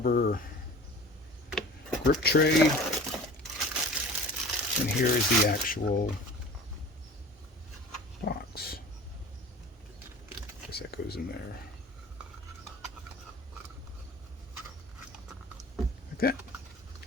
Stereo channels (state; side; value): normal; both; correlation 0.40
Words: grip tray. And here is the actual box. Guess that goes in there. Like that.